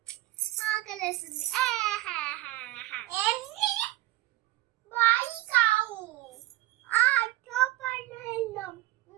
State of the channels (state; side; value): quieter; left; 17.7 dB